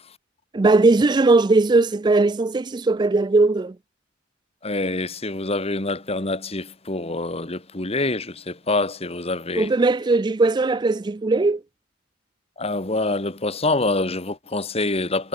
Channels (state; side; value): normal; both; correlation 0.57